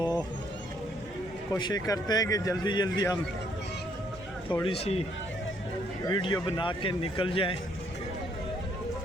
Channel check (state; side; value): noise; right; hum, 21 dB below the sound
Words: कोशिश करते हैं कि जल्दी जल्दी हम थोड़ी सी वीडियो बना के निकल जाएं,